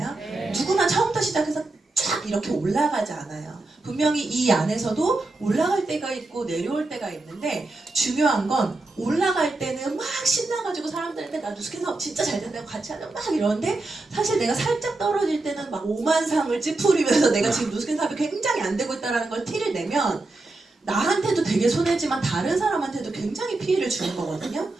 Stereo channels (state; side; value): quieter; left; 3.1 dB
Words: 누구나 처음부터 시작해서 쫙 이렇게 올라가지 않아요. 분명히 이 안에서도 올라갈 때가 있고 내려올 때가 있는데, 중요한 건 올라갈 때는 막 신나가지고 사람들한테 나 누스킨 사업 진짜 잘 된다고 같이 하자 막 이러는데, 사실 내가 살짝 떨어질 때는 막 오만상을 찌푸리면서 내가 지금 누스킨 사업이 굉장히 안 되고 있다는 걸 티를 내면 나한테도 되게 손해지만 다른 사람한테도 굉장히 피해를 주는 거거든요.